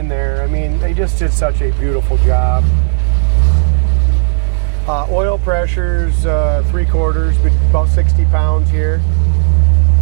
there. I mean, they just did such a beautiful job. Oil pressure's 3/4, but about 60 pounds here.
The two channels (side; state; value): left; silent; digital silence